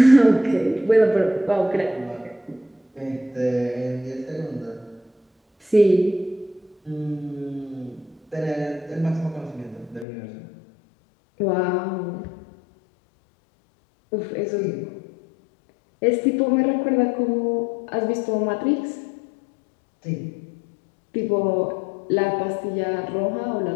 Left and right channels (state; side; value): drops out; right; at 10.1 s